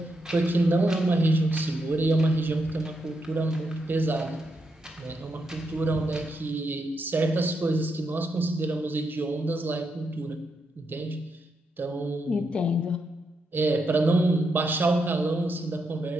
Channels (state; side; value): normal; both; correlation 0.82